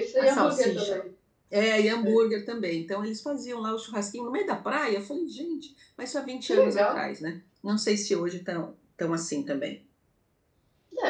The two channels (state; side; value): identical; both; correlation 1.00